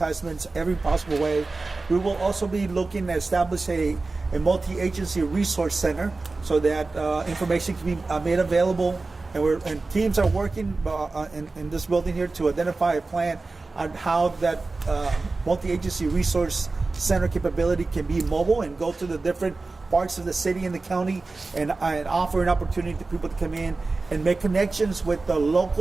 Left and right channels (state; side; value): quieter; left; 3.6 dB